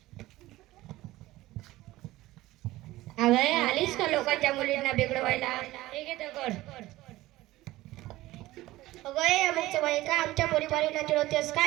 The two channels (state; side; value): quieter; left; 17.4 dB